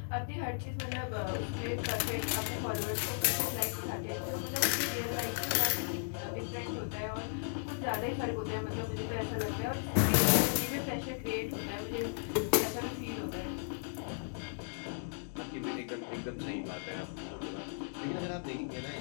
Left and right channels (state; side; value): silent; right; digital silence